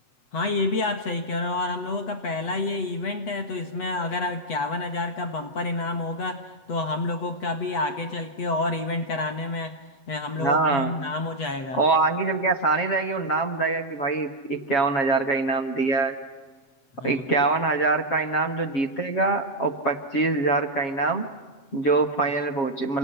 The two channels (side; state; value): right; late; 8.1 ms